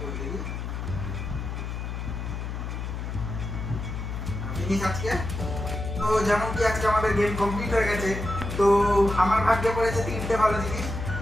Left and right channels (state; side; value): noise; left; hum, 5 dB below the sound